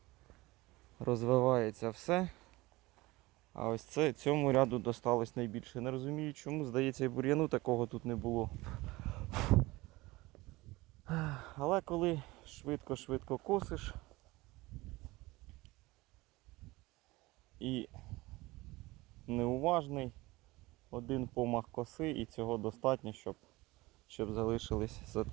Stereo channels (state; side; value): quieter; left; 20.9 dB